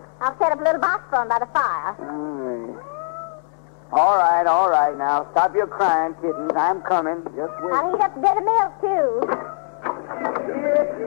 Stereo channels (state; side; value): silent; right; digital silence